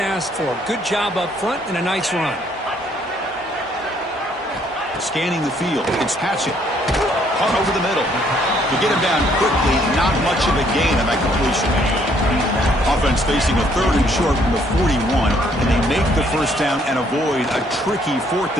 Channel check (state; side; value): normal; both; correlation 0.66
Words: for. Good job up front and a nice run. Scanning the field, it's Hatchett. Caught over the middle. To get him down quickly, not much of a gain on that completion. Offense facing a 3rd and short from the 41, and they make the 1st down and avoid a tricky 4th